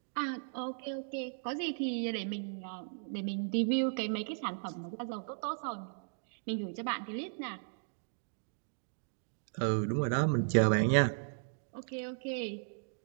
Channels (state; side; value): silent; left; digital silence